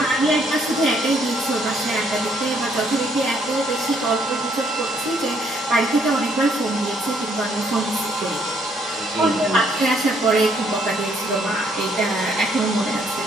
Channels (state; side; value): normal; both; correlation 0.68